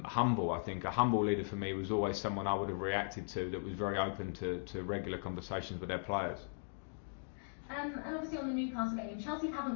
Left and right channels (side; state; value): right; silent; digital silence